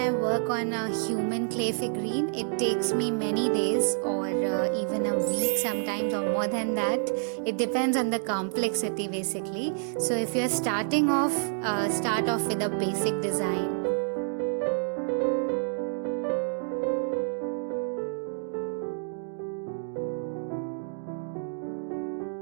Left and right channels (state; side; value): silent; left; 59 dB below the other